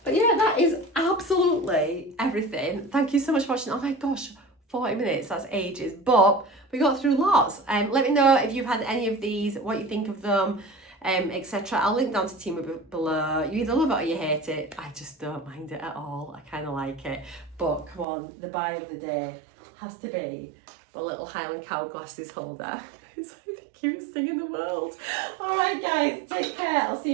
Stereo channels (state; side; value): drops out; left; at 18.1 s